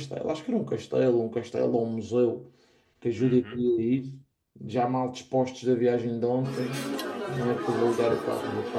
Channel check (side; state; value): both; identical; correlation 1.00